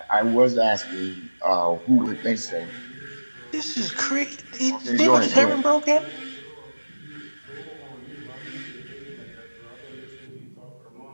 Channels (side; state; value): both; inverted; correlation -1.00